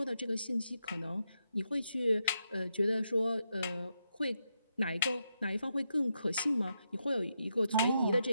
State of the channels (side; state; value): both; inverted; correlation -0.83